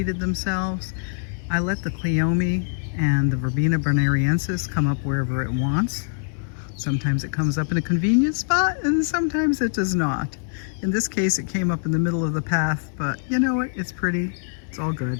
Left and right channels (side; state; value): right; silent; 62 dB below the other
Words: themselves. I let the Cleome and the Verbena bonariensis come up wherever it wants. Sometimes it comes up in a convenient spot and sometimes it does not. In this case it came up in the middle of the path, but you know what, it's pretty, it's all